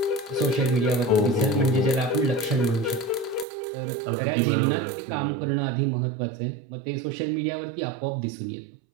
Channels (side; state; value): left; drops out; at 3.5 s